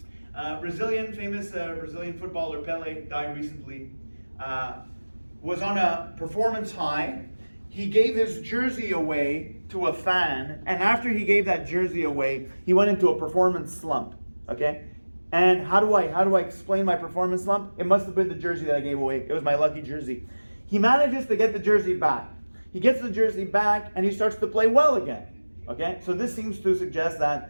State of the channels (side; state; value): both; inverted; correlation -1.00